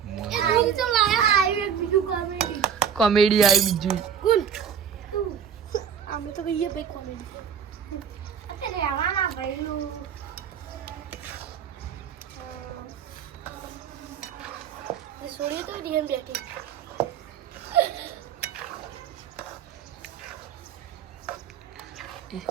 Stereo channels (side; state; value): left; quieter; 7.8 dB